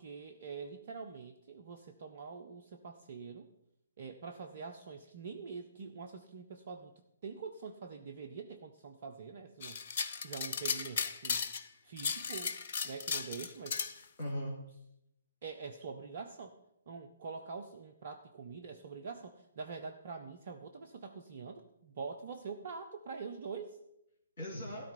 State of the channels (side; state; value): both; inverted; correlation -0.62